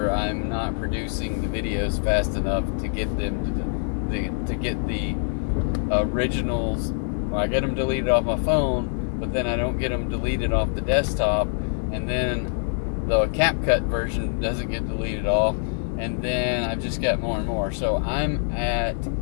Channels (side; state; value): right; silent; digital silence